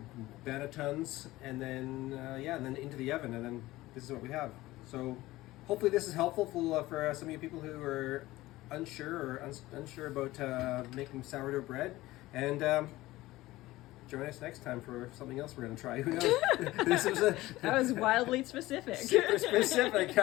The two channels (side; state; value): right; quieter; 17.8 dB